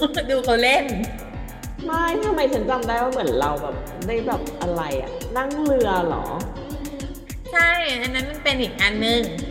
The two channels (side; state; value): both; identical; correlation 1.00